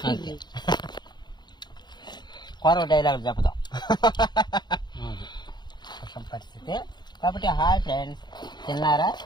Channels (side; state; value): right; late; 0.21 ms